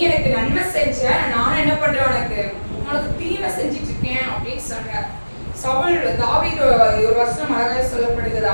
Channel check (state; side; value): inverted; both; correlation -1.00